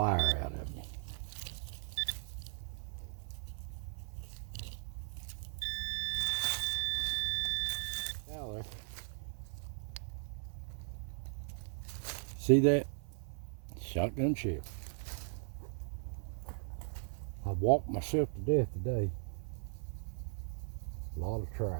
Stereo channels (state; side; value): silent; left; 52 dB below the other